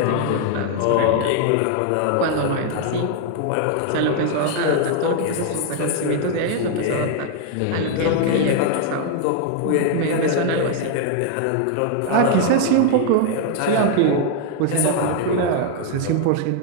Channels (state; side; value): different; both; correlation 0.00